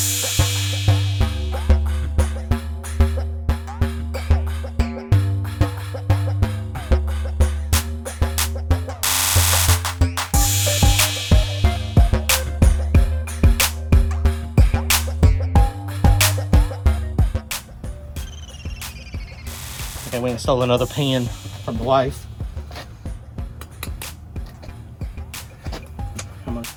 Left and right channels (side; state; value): both; identical; correlation 1.00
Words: Okay, we installed another pan from the wife. Come on.